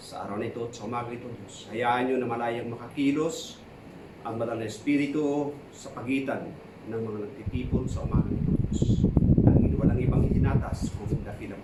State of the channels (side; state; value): both; identical; correlation 1.00